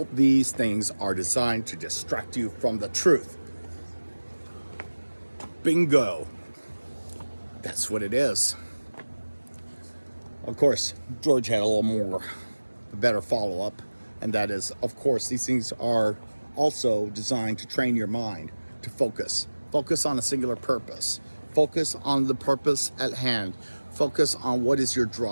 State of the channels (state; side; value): inverted; both; correlation -1.00